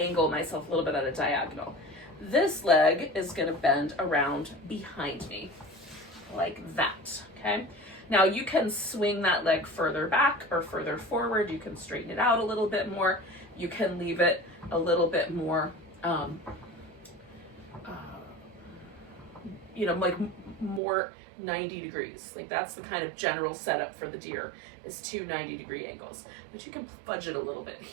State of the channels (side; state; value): left; drops out; at 20.8 s